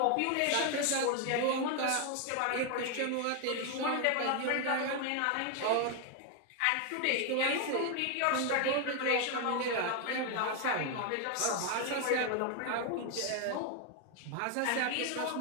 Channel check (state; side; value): different; both; correlation 0.01